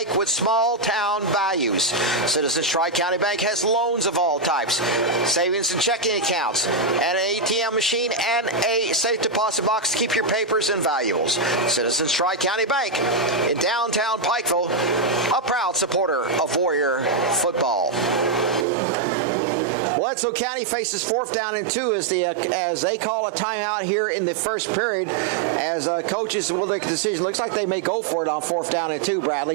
with small town values. Citizens Tri-County Bank has loans of all types, savings and checking accounts, and an ATM machine and a safe deposit box to keep your papers and valuables. Citizens Tri-County Bank in downtown Pikeville, a proud supporter of Warrior football. Bledsoe County faces 4th down and 2 as they call a timeout here in the first period as coaches will make a decision. Looks like they may go for it on 4th down and 2,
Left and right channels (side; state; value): left; drops out; at 18.7 s